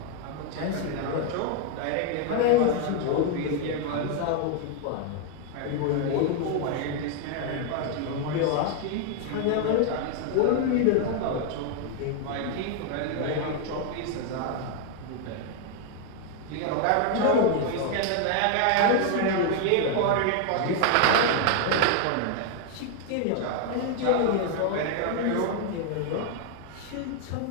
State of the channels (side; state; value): both; different; correlation 0.00